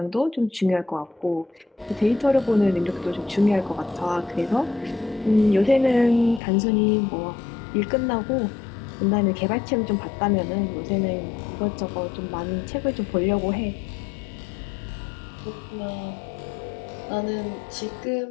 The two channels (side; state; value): right; drops out; at 6.4 s